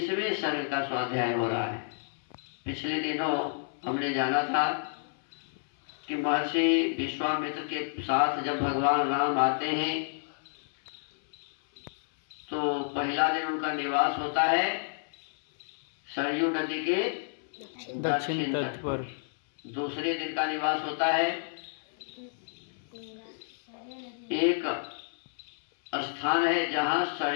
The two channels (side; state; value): right; silent; 58 dB below the other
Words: सर्ग का स्वाध्याय हो रहा है। पिछले दिनों हमने जाना था कि महर्षि विश्वामित्र के साथ जब भगवान राम आते हैं तो पहला दिन उनका निवास होता है सरयू नदी के दक्षिण तट पर। दूसरे दिन का निवास होता है एक स्थान है जहाँ